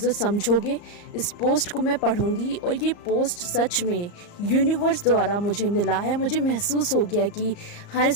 समझोगे। इस पोस्ट को मैं पढ़ूंगी और ये पोस्ट सच में यूनिवर्स द्वारा मुझे मिला है। मुझे महसूस हो गया कि हाँ,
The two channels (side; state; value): right; late; 34 ms